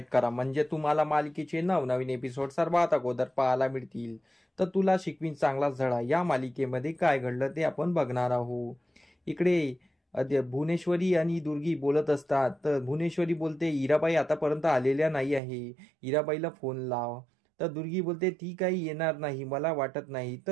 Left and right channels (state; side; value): drops out; left; at 15.4 s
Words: करा, म्हणजे तुम्हाला मालिकेचे नवनवीन एपिसोड सर्वात अगोदर पाहायला मिळतील. तर तुला शिकवीन चांगला धडा या मालिकेमध्ये काय घडलं ते आपण बघणार आहोत. इकडे भुवनेश्वरी आणि दुर्गी बोलत असतात. तर भुवनेश्वरी बोलते, इराबाई आतापर्यंत आलेल्या नाही आहे, इराबाईला फोन लाव. तर दुर्गी बोलते, ती काही येणार नाही, मला वाटत नाही.